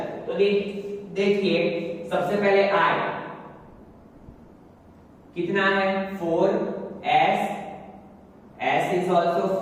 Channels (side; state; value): both; identical; correlation 1.00